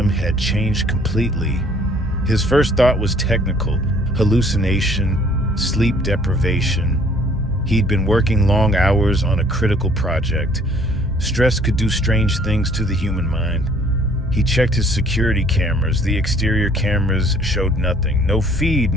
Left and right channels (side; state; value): both; normal; correlation 0.58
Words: had changed completely. His first thought was technical, hallucination, sleep deprivation. He'd been working long hours on a critical project. Stress could do strange things to the human mind. He checked his security cameras. The exterior cameras showed nothing. No feed,